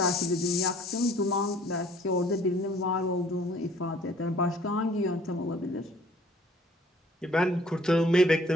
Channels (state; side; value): normal; both; correlation 0.56